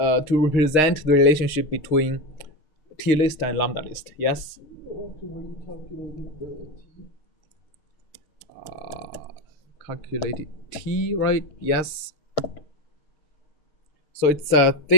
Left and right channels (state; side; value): late; right; 6.5 ms